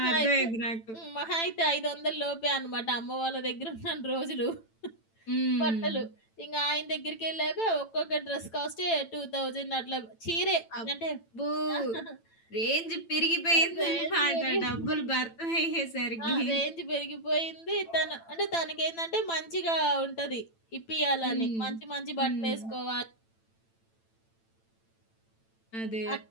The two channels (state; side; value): late; right; 9.0 ms